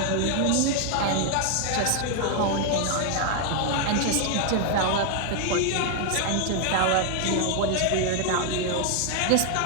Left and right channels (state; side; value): different; both; correlation 0.00